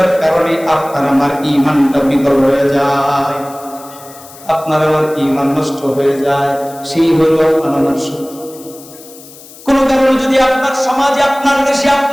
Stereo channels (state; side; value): noise; left; hiss, 20 dB below the sound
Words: কারণে আপনার আমার ঈমানটা বিকল হয়ে যায়, আপনার আমার ঈমান নষ্ট হয়ে যায়, সেই হইল আপনার আমার শত্রু। কোন কারণে যদি আপনার সমাজে, আপনার দেশে,